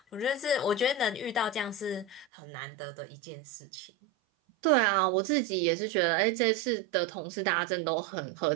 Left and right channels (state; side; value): drops out; left; at 2.2 s